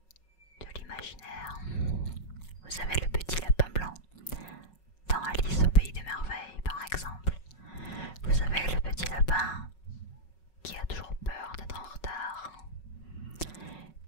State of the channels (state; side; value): late; right; 5.4 ms